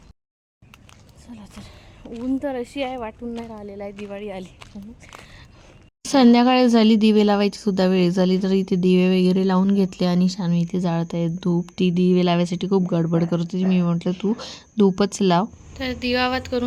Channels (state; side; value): identical; both; correlation 1.00